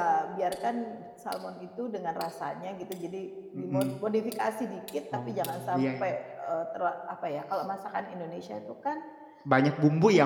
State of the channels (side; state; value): both; identical; correlation 1.00